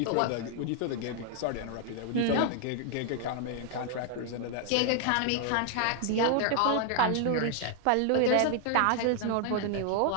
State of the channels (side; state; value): both; different; correlation 0.00